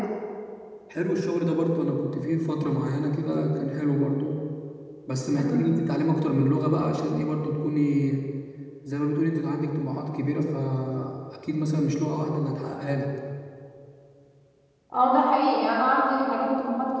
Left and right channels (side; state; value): both; identical; correlation 1.00